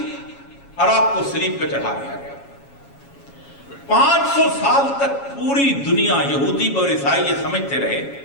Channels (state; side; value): late; right; 7.2 ms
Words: اور آپ کو صلیب پہ چڑھا دیا گیا. 500 سال تک پوری دنیا, یہودی اور عیسائی یہ سمجھتے رہے